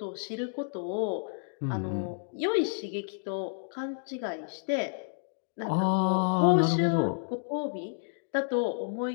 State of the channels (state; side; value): silent; right; digital silence